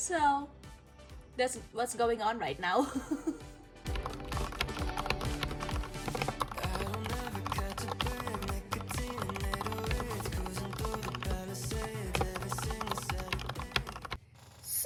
that's what's going on right now.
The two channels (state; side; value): identical; both; correlation 1.00